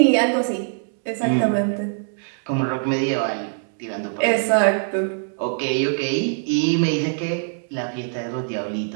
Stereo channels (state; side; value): silent; left; digital silence